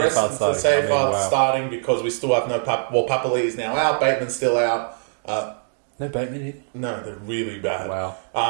of the Safeguard starting because we still have no... Papali is now out, Bateman's still out. No Bateman here? No, they're really bad.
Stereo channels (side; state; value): left; silent; digital silence